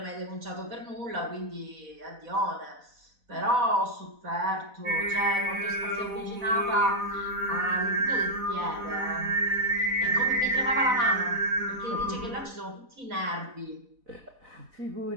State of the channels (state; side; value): late; left; 4.0 ms